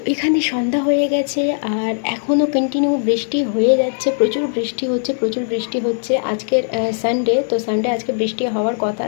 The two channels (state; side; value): silent; right; digital silence